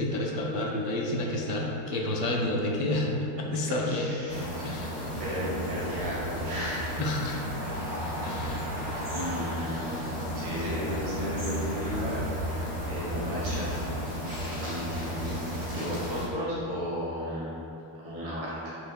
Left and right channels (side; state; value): left; late; 13 ms